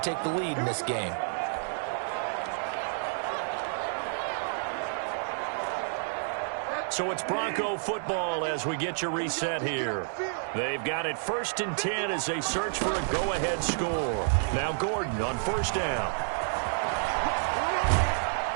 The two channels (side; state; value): left; silent; 58 dB below the other